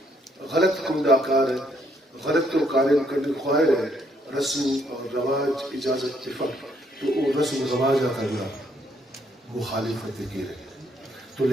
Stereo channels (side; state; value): both; normal; correlation 0.70